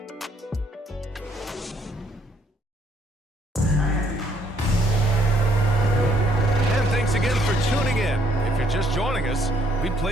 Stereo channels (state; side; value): normal; both; correlation 0.66